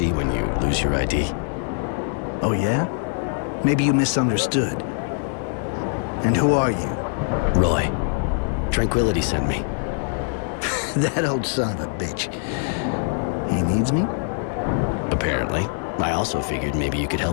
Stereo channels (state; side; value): silent; right; 63 dB below the other